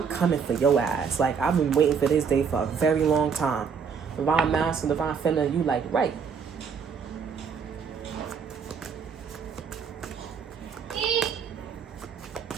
coming for your ass. Like, I've been waiting for this day for a very long time. Divine masculine, divine feminine, you like, right.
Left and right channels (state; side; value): quieter; left; 6.3 dB